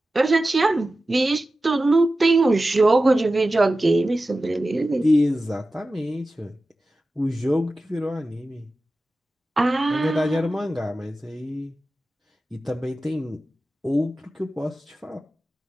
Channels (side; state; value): both; normal; correlation 0.94